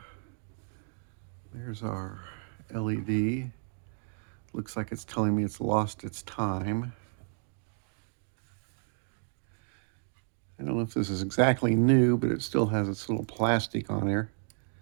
there's our LED. Looks like it's telling me it's lost its time. I don't know if this is exactly new, but it still has its little plastic on there.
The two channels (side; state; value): left; silent; 56 dB below the other